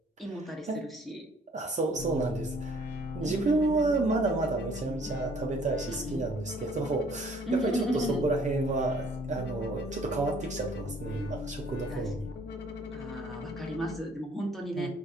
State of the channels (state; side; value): normal; both; correlation 0.59